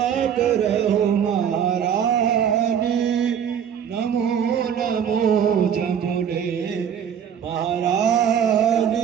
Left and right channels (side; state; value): left; quieter; 8.4 dB